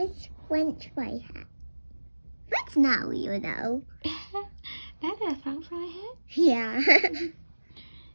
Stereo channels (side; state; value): both; inverted; correlation -1.00